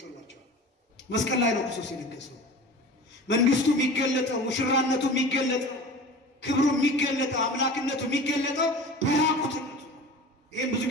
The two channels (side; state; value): both; normal; correlation 0.37